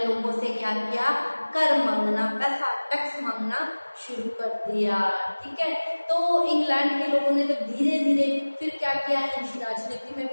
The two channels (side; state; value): both; inverted; correlation -1.00